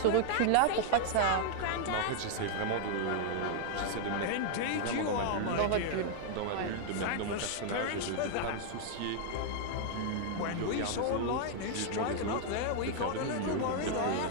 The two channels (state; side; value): different; both; correlation -0.01